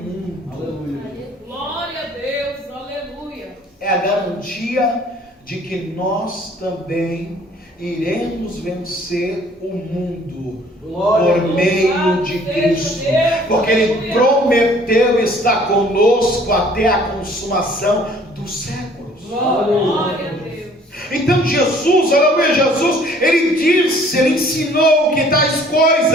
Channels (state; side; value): normal; both; correlation 0.56